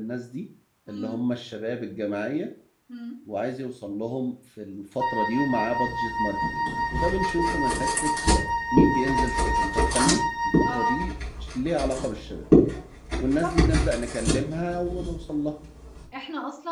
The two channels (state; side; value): identical; both; correlation 1.00